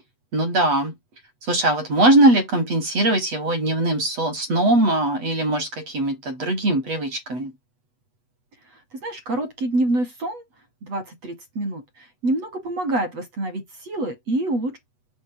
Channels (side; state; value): left; late; 8.1 ms